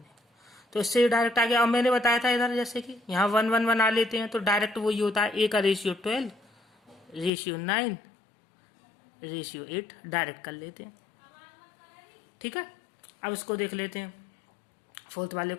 तो इससे डायरेक्ट आ गया। अब मैंने बताया था इधर, जैसे कि यहाँ 1 1 बना लेते हैं तो डायरेक्ट वही होता है, a का रेशियो 12, रेशियो 9, रेशियो 8, डायरेक्ट कर लेते हैं, ठीक है। अब इसको देख लेते हैं, फोर्थ वाले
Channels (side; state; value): right; drops out; at 7.3 s